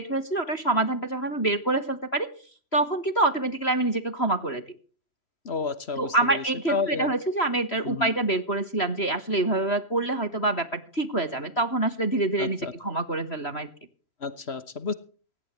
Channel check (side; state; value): right; late; 3.0 ms